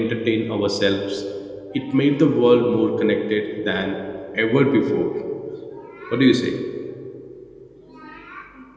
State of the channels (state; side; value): identical; both; correlation 1.00